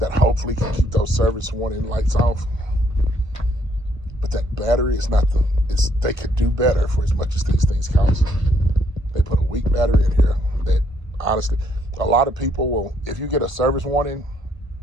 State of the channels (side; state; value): left; late; 1.5 ms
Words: that hopefully can keep those service warning lights off. But that battery is not they could do better for as much as these things cost. They put a weak battery in here that, honestly, a lot of people will, if you get a service warning,